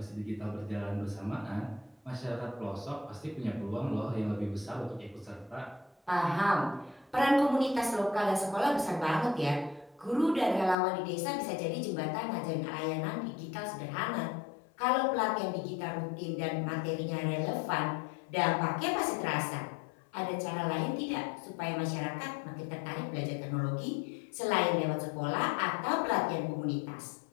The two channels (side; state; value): right; drops out; at 10.8 s